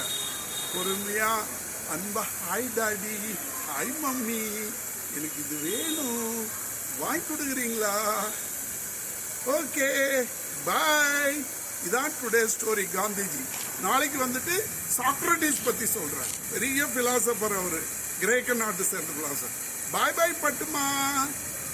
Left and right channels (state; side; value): identical; both; correlation 1.00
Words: பொறுமையா அன்பா, ஹாய் டாடி, ஹாய் மம்மி, எனக்கு இது வேணும், வாங்கி கொடுக்குறீங்களா, ஓகே பாய். இதான் டுடே ஸ்டோரி காந்திஜி. நாளைக்கு வந்துட்டு சாக்ரட்டிஸ் பத்தி சொல்றேன், பெரிய பிலாசபர் அவரு, கிரேக்க நாட்டு சேர்ந்த பிலாசபர். பாய் பாய் பட்டுமா,